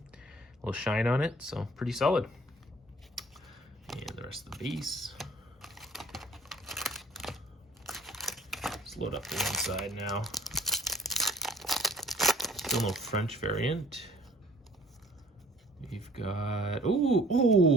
a little shine on it, so pretty solid. And the rest of the base. Let's load up the one side now. Still no French variant. We've got,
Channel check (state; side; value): normal; both; correlation 0.54